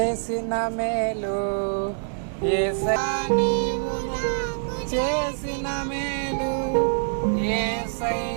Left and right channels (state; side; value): silent; left; 62 dB below the other